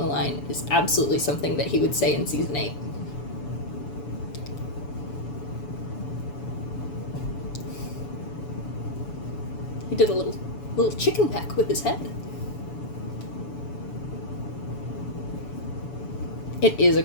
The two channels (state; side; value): late; right; 7.0 ms